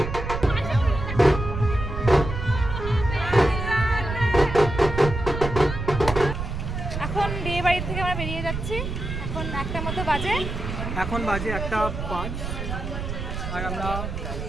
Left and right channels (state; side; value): noise; right; rumble, 5 dB below the sound